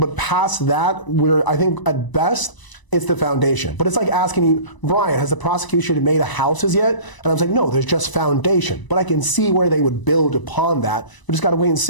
past that, I think at best, it's the foundation. But it's like asking you, Brian, has the prosecution made a houses yet? And I was like, no, there's just foundation. But I can see where they would build upon that. We just got to wait and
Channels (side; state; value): right; late; 1.0 ms